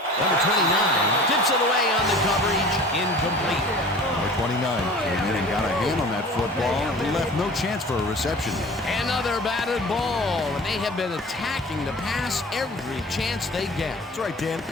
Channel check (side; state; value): both; normal; correlation 0.42